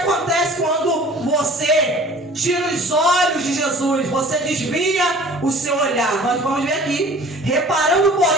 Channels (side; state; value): both; normal; correlation 0.47